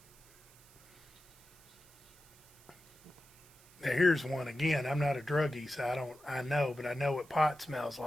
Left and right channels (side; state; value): right; noise; hiss, 26 dB below the sound